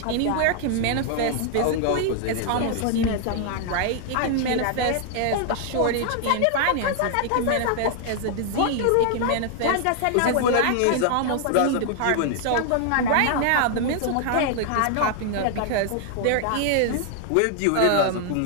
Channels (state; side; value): different; both; correlation 0.00